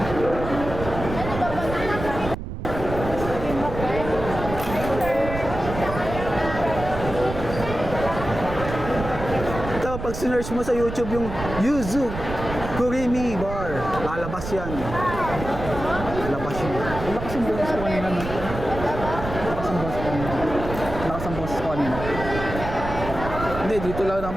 Ito, pag sinearch mo sa YouTube yung Yuzu Kurimi Bar, lalabas yan. Lalabas yun. Lakas ang boses ko kanina. Lakas ang boses ko kanina. Lakas ang boses ko kanina. Hindi, dito lang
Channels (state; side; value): noise; right; rumble, 8 dB below the sound